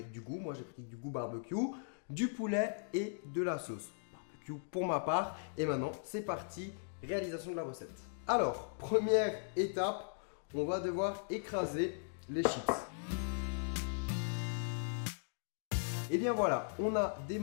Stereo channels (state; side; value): silent; right; digital silence